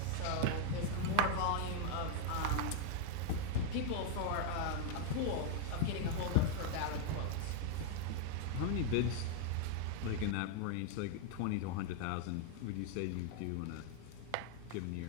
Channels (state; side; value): different; both; correlation 0.01